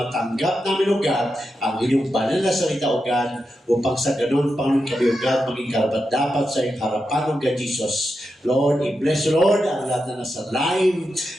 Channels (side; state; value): both; normal; correlation 0.88